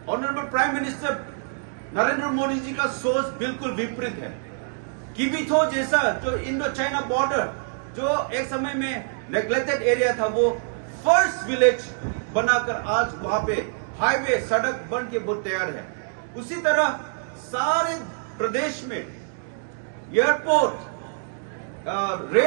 honourable prime minister Narendra Modi ji का सोच बिल्कुल विपरीत है। किबिथो जैसा जो इंडो चाइना बॉर्डर जो एक समय में नेग्लेक्टेड एरिया था, वो फर्स्ट विलेज बनाकर आज वहां पे हाईवे सड़क बन के बहुत तैयार है। उसी तरह सारे प्रदेश में airport,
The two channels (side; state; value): left; silent; digital silence